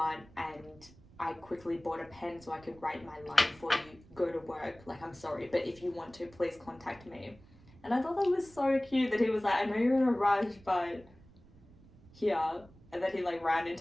and I quickly bought a pen so I could write my line for you. Go to work. Like, I'm sorry, but if you want to, please contact me." And I thought that was so cute that he was like, "I know you're in a rush, but here." And then he like ran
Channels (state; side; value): noise; right; rumble, 24 dB below the sound